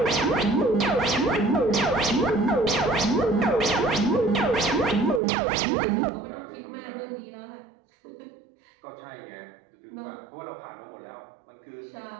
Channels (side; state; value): left; drops out; at 5.2 s